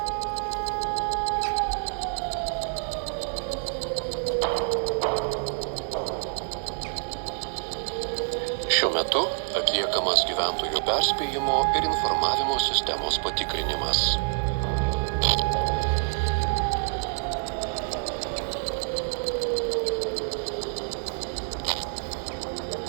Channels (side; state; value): left; silent; digital silence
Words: Šiuo metu atliekamas gyventojų perspėjimo ir informavimo sistemos patikrinimas.